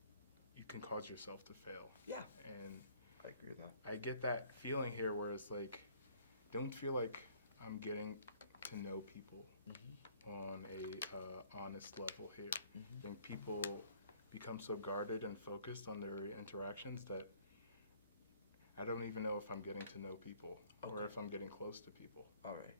you can cause yourself to fail. Yeah, And I agree with that. I get that feeling here where it's like, don't feel like I'm getting to know people on a honest level here. I think people become so guarded and focused on their interactions that I don't even know if I'm getting to know people or if I'm getting close to people. All right.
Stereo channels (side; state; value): both; inverted; correlation -0.58